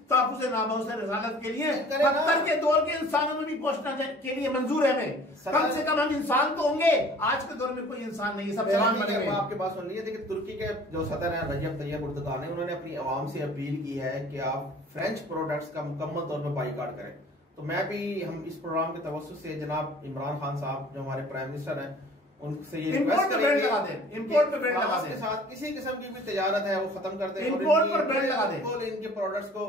ताक़ुज़ नामुज़ रिसालत के लिए पत्थर के दौर के इंसानों में भी पहुंचना के लिए मंजूर है हमें। कम से कम हम इंसान तो होंगे, आज के दौर में कोई इंसान नहीं है, सब जवान बने हुए। आपके पास सुन लीजिए, देखिए तुर्की के जो सदर हैं रजब तैयब एर्दोगान ने, उन्होंने अपनी आवाम से अपील की है कि आप फ्रेंच प्रोडक्ट्स का मुकम्मल तौर पर बाइकाट करें। तो मैं भी, हम इस प्रोग्राम के तवज्जुह से जनाब इमरान खान साहब जो हमारे प्राइम मिनिस्टर हैं, उनसे ये इंपोर्ट पे बैन लगा दें, इंपोर्ट पे बैन लगा दें, के साथ किसी किस्म की भी तिजारत है वो खत्म कर दें, इंपोर्ट पर बैन लगा दें, इनके प्रोडक्ट्स को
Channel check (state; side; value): normal; both; correlation 0.49